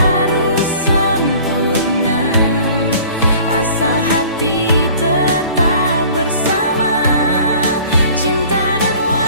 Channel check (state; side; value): inverted; both; correlation -0.49